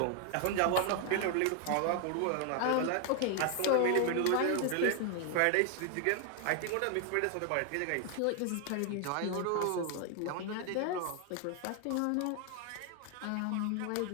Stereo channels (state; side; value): different; both; correlation 0.00